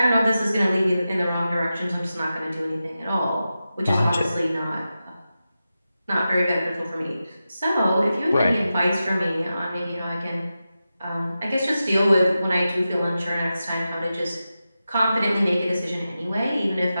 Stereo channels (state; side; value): inverted; both; correlation -0.92